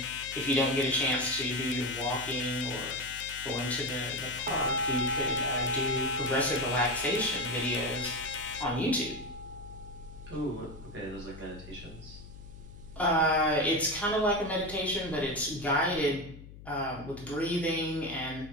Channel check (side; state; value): left; noise; hum, 16 dB below the sound